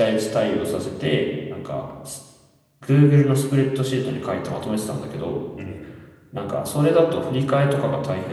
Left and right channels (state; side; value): identical; both; correlation 1.00